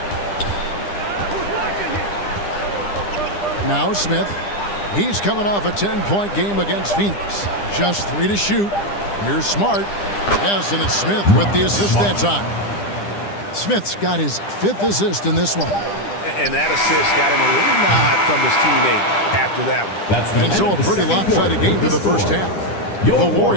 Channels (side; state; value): right; late; 10 ms